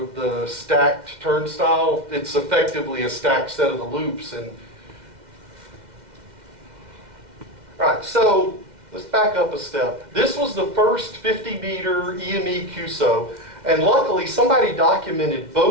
the stacked turnstile. It's effectively a stacked set of the loops. And all right, so let's back up a step. This was the first 50-meter EME QSO, and luckily somebody documented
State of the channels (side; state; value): left; late; 2.1 ms